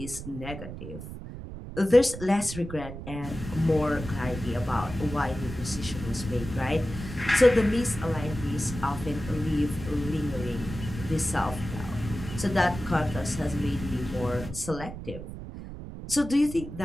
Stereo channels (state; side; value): noise; right; rumble, 10 dB below the sound